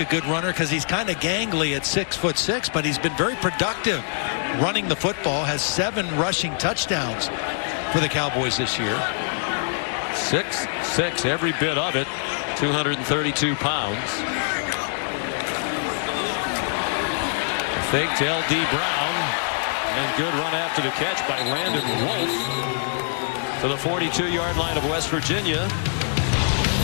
good runner because he's kind of gangly at 6'6", but he's been very productive running the football. Has 7 rushing touchdowns for the Cowboys this year. 6'6", every bit of it. 232 pounds. Fake to L.D. Brown, and good run after the catch by Landon Wolf to the 42-yard line of West Virginia.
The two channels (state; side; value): silent; right; digital silence